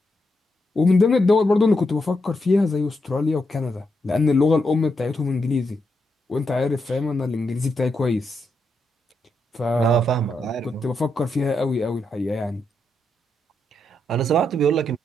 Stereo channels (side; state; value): both; normal; correlation 0.82